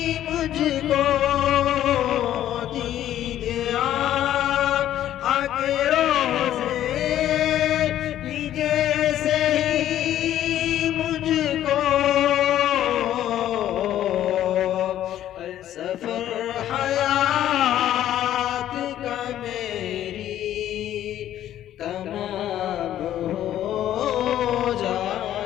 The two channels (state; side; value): quieter; right; 12.0 dB